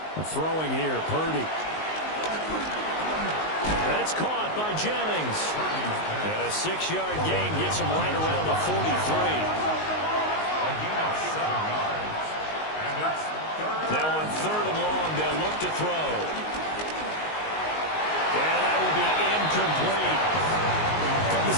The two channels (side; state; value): right; late; 19 ms